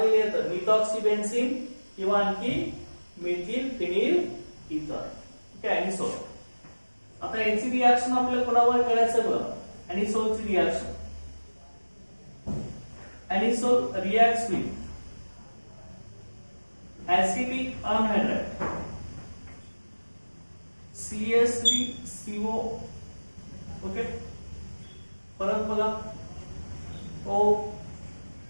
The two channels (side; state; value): both; inverted; correlation -1.00